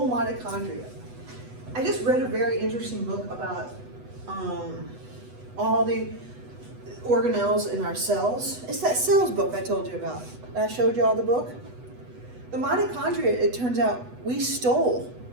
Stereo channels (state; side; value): late; left; 8.1 ms